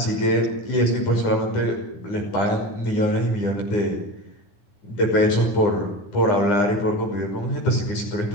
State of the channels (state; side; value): late; right; 9.8 ms